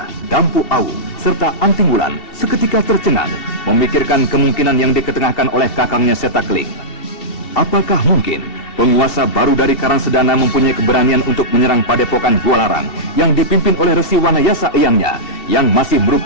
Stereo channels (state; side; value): late; right; 2.7 ms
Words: Dampu Awu, serta Anting Wulan seketika tercengang memikirkan kemungkinan yang diketengahkan oleh kakangnya Setakling. Apakah mungkin penguasa baru dari Karangsedana mempunyai keberanian untuk menyerang padepokan Gualarang yang dipimpin oleh Resi Wanayasa Eyangnya yang masih